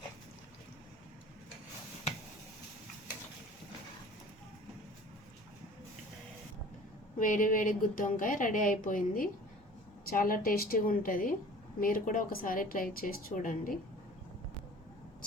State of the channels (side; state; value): both; normal; correlation 0.45